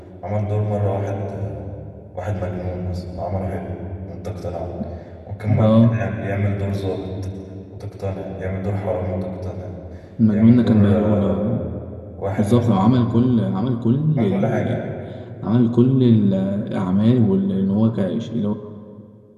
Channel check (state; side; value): identical; both; correlation 1.00